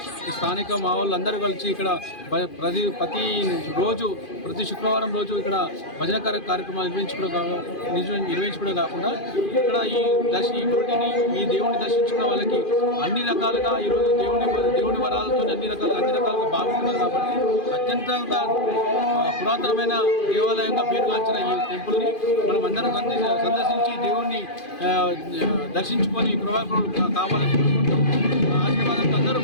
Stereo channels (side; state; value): right; late; 2.5 ms